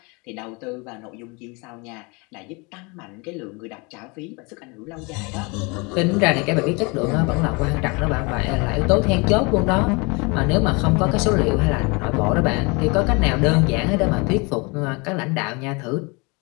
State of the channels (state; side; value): quieter; right; 28.6 dB